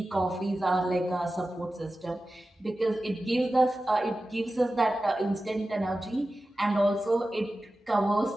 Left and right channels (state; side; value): normal; both; correlation 0.94